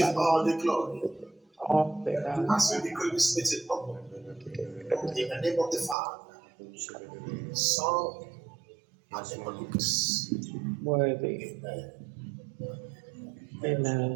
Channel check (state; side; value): drops out; left; at 6.0 s